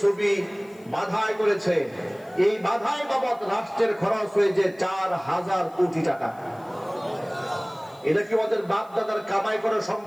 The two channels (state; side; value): noise; left; hiss, 30 dB below the sound